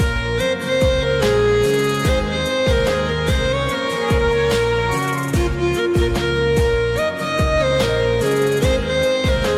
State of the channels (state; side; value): identical; both; correlation 1.00